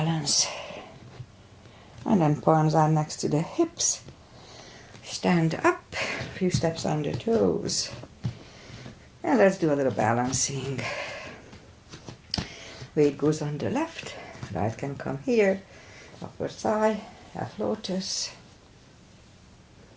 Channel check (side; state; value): both; identical; correlation 1.00